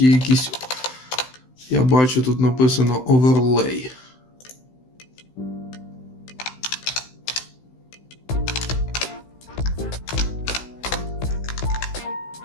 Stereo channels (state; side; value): late; right; 16 ms